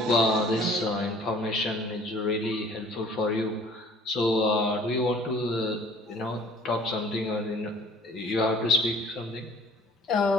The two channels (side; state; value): both; normal; correlation 0.52